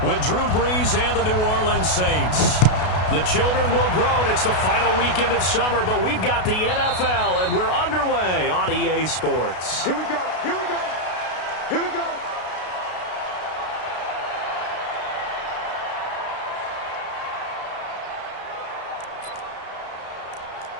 with Drew Brees and the New Orleans Saints. The children will groan. It's the final weekend of summer, but we've got the NFL, and we're underway on EA Sports. Here we go. Here we go. Here we go.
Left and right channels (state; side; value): late; right; 32 ms